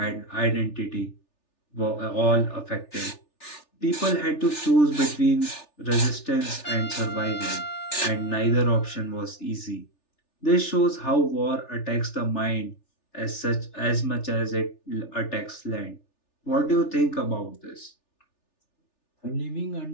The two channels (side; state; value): right; late; 3.4 ms